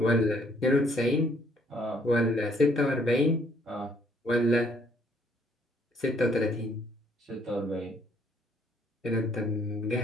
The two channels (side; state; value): both; normal; correlation 0.66